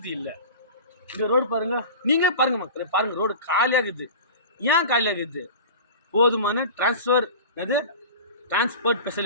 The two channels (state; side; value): inverted; both; correlation -0.35